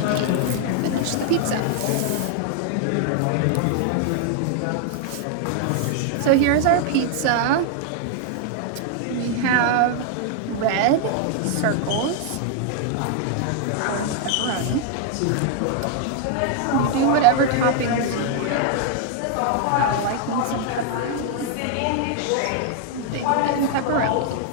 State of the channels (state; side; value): different; both; correlation 0.00